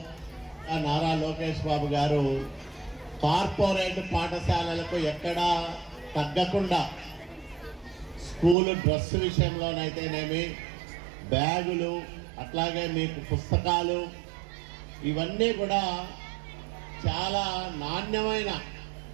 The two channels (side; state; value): left; drops out; at 8.6 s